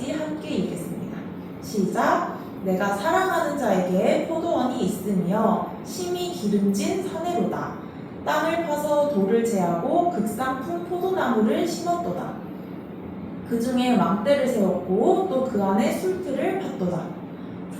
함께 읽겠습니다. 시작! 내가 사랑하는 자에게 포도원이 있으며 심히 기름진 산에로다. 땅을 파서 돌을 제하고 극상품 포도나무를 심었도다. 그 중에 망대를 세웠고 또 그 안에 술틀을 팠도다.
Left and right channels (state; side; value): identical; both; correlation 1.00